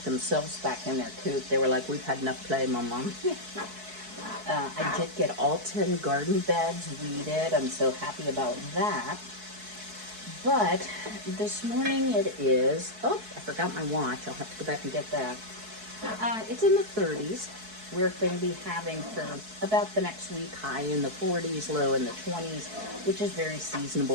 themselves back in their coop. They were like, we've had enough play, Mom. I did get all 10 garden beds weeded. I'm so happy about that. But this morning it is, I forgot my watch. I'll have to go back and get that. It's in the 30s. We're going to be having for about the next week high in the 40s, low in the 20s, which is very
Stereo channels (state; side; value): late; left; 4.6 ms